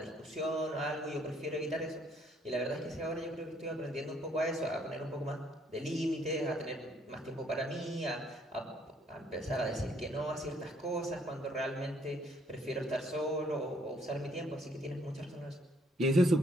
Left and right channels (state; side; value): normal; both; correlation 0.66